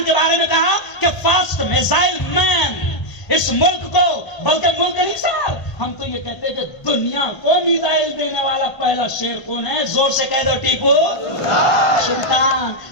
के बारे में कहा कि फास्ट मिसाइल मैन। इस मुल्क को, बल्कि मुल्क नहीं साहब, हम तो ये कहते हैं कि दुनिया को मिसाइल देने वाला पहला शेर कौन है? जोर से कह दो, टीपू सुल्तान।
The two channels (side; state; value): right; late; 1.5 ms